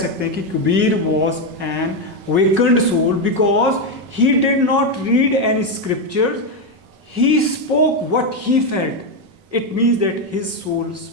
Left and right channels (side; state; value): left; late; 5.3 ms